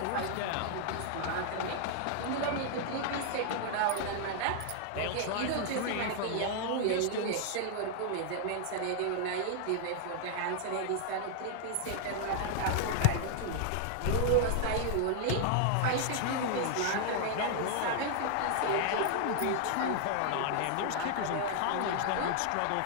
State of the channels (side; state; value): both; different; correlation 0.00